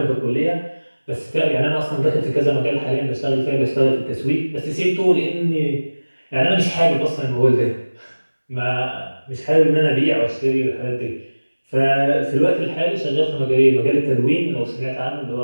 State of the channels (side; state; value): both; inverted; correlation -1.00